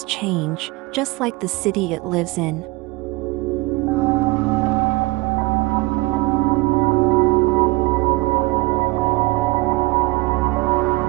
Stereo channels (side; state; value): left; quieter; 22.6 dB